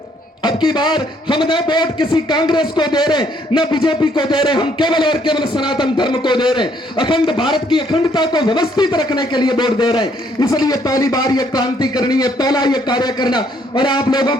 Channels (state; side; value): normal; both; correlation 0.67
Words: अब की बार हम न वोट किसी कांग्रेस को दे रहे, न बीजेपी को दे रहे, हम केवल और केवल सनातन धर्म को दे रहे, अखंड भारत की अखंडता को व्यवस्थित रखने के लिए वोट दे रहे हैं। इसलिए पहली बार ये क्रांति करनी है, पहला ये कार्य करना, और आप लोगों